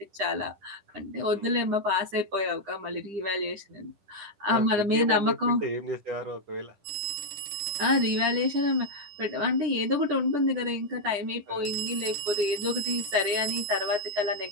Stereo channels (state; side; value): late; left; 10 ms